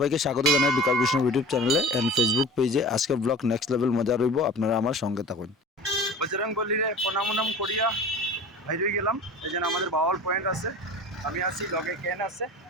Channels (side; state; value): both; normal; correlation 0.38